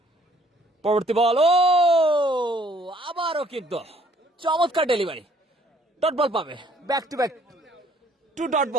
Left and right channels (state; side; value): normal; both; correlation 0.61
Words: পরবর্তী বল, ও আবারও কিন্তু চমৎকার ডেলিভারি, ডট বল পাবে, back to back 2 dot